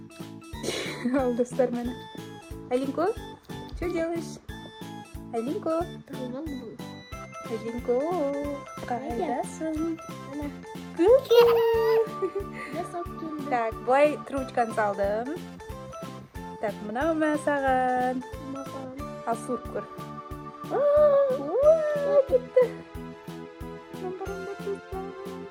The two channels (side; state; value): both; identical; correlation 1.00